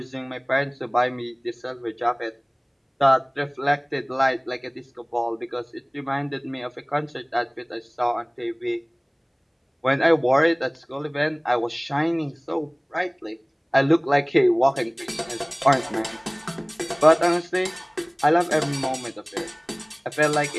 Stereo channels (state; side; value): identical; both; correlation 1.00